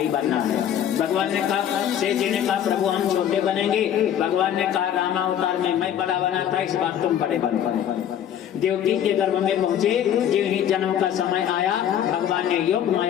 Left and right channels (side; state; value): right; quieter; 10.0 dB